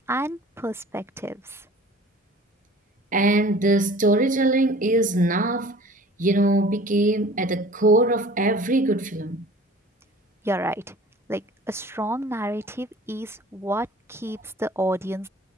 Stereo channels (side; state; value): both; normal; correlation 0.46